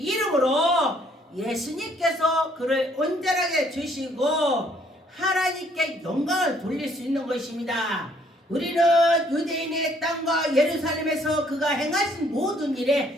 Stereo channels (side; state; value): both; normal; correlation 0.64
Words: 예수님께서 그를 온전하게 주시고 하나님께 영광을 돌릴 수 있는 것입니다. 우리는 유대인의 땅과 예루살렘에서 그가 행하신 모든